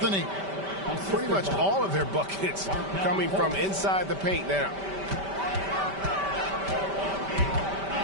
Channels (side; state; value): left; late; 5.1 ms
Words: Pretty much all of their buckets coming from inside the paint now.